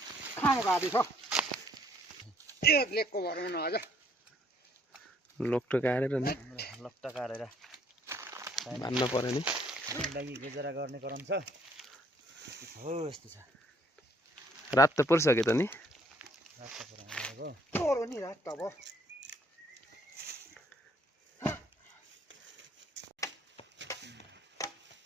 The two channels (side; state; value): both; normal; correlation 0.64